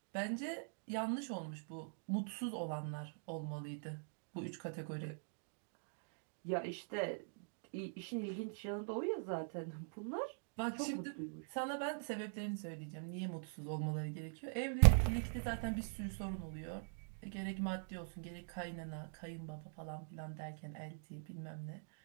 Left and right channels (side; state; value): left; silent; digital silence